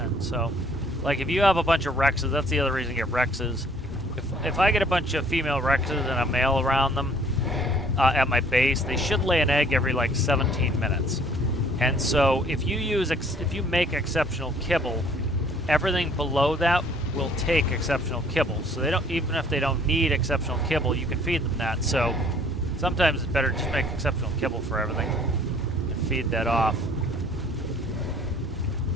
so, like, if you have a bunch of Rexes, that's the other reason you get Rexes. If I get a bunch of female Rexes and a male around them at my base, they should lay an egg every like 17 minutes. And so if you make exceptional kibble, everything below that will take exceptional kibble. So even if they don't need exceptional kibble, you can feed them that. So sometimes it's better to just make exceptional kibble for everything and feed that off.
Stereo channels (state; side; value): normal; both; correlation 0.57